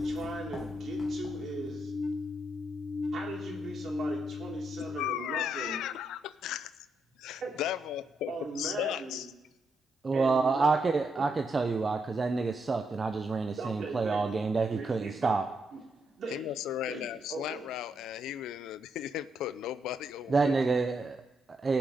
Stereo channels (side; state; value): both; normal; correlation 0.79